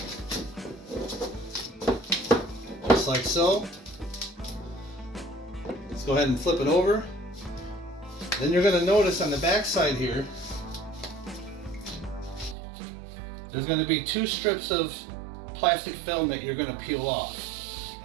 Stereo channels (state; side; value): drops out; left; at 12.6 s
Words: Just like so. Let's go ahead and flip it over. Then you're going to notice on the back side here, there's going to be 2 strips of plastic film that you're going to peel off.